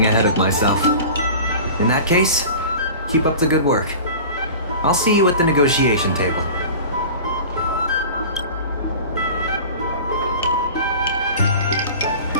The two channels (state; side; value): inverted; both; correlation -0.37